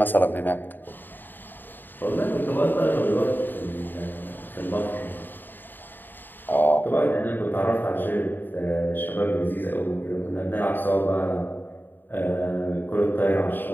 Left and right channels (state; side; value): late; right; 0.092 ms